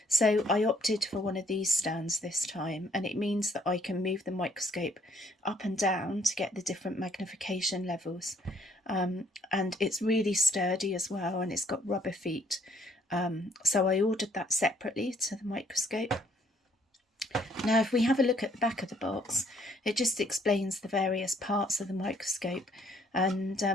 so I opted for one of these stands this time, and it means that I can move the microscope up and down to get the different magnification levels. And it's really sturdy as well, and it's got rubber feet, so I ordered that separately to the microscope. Now, if we have a look at the back of the box, it just explains the various parts of the microscope, and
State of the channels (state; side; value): normal; both; correlation 0.65